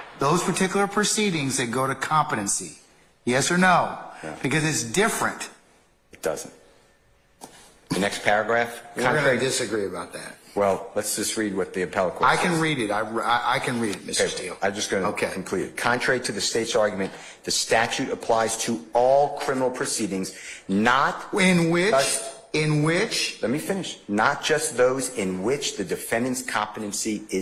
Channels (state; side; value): identical; both; correlation 1.00